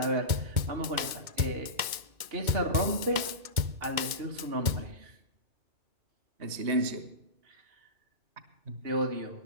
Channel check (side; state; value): left; late; 2.2 ms